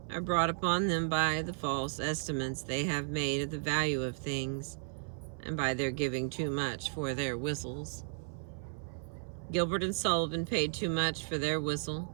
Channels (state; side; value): silent; left; 55 dB below the other